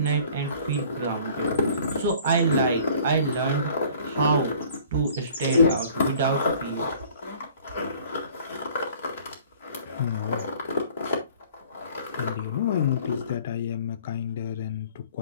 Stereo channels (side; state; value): both; inverted; correlation -0.52